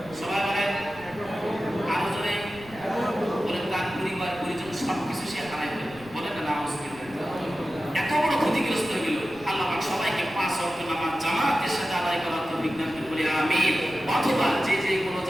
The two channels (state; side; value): noise; right; rumble, 21 dB below the sound